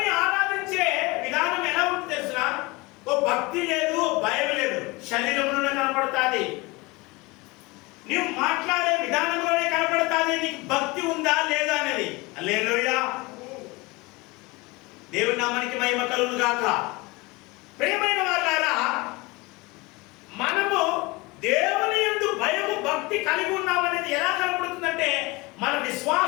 ఆరాధించే విధానం ఎలా ఉంటుంది తెలుసునా? ఓ భక్తి లేదు, భయం లేదు, శరీరంలోనే కనపడుతుంది. నీవు మాట్లాడే విధానంలోనే కనపడుతుంది నీకు భక్తి ఉందా లేదా అనేది. హల్లెలూయా, దేవుని నామానికి మహిమ కలుగును గాక. ప్రియమైన వారులారా, మనము దేవుని యందు భయము భక్తి కలిగి ఉన్నామనేది ఎలా కనపడుతుందంటే మన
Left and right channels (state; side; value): quieter; right; 24.1 dB